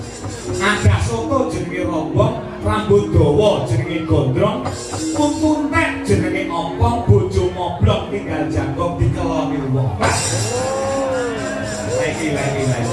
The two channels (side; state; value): both; identical; correlation 1.00